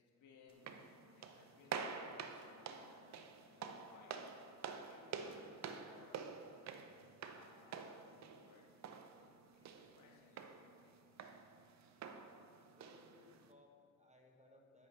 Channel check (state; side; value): quieter; left; 5.4 dB